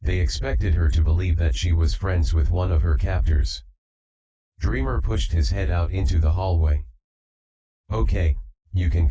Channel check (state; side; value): identical; both; correlation 1.00